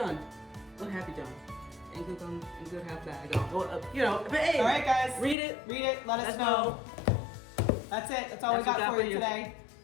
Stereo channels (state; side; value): drops out; right; at 5.4 s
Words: What have you done? And good half bad. Well, you know, but hey. All right, guys. Read it. Let us know. That's it. That's all we That's what got for you today.